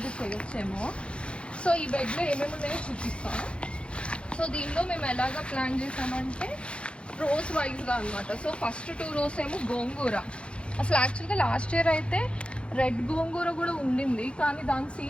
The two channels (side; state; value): right; late; 0.058 ms